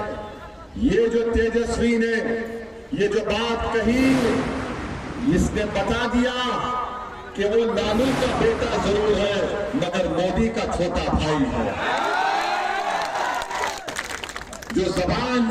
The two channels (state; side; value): identical; both; correlation 1.00